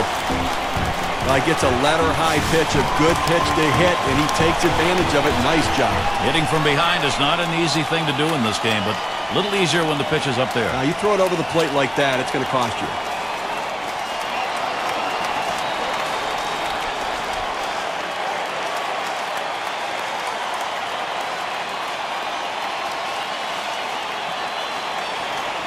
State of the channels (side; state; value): both; identical; correlation 1.00